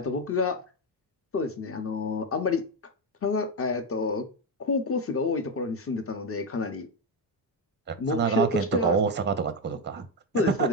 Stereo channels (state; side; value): normal; both; correlation 0.09